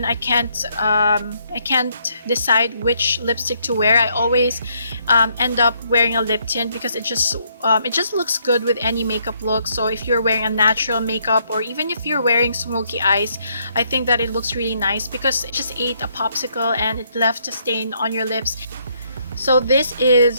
I can't decide which lipstick to wear, I always end up wearing a lip tint because it just looks good with any makeup look. So if you're wearing a natural makeup, or even if you're wearing smoky eyes, I think that it looks really nice because it just ate a popsicle and it left a stain on your lips. So this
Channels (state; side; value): inverted; both; correlation -0.72